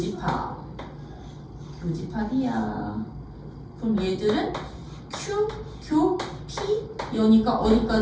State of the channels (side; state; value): both; identical; correlation 1.00